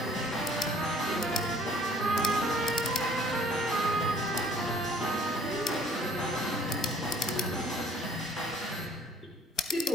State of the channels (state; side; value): normal; both; correlation 0.56